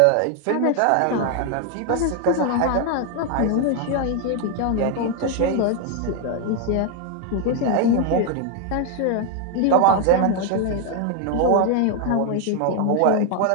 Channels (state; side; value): different; both; correlation 0.01